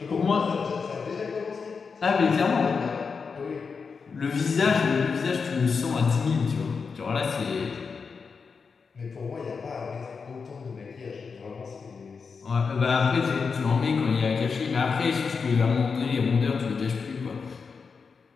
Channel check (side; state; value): right; quieter; 5.3 dB